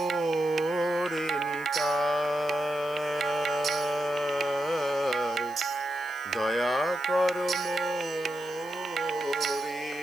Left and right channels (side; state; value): left; noise; hiss, 23 dB below the sound